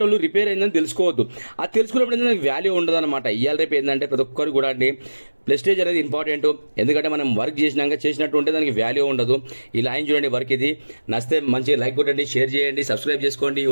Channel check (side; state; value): both; inverted; correlation -1.00